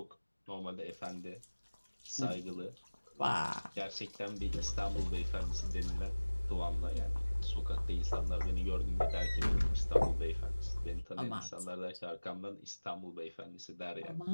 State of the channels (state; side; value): inverted; both; correlation -1.00